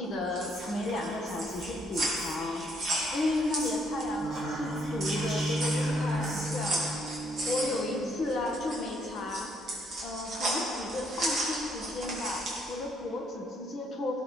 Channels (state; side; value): normal; both; correlation 0.70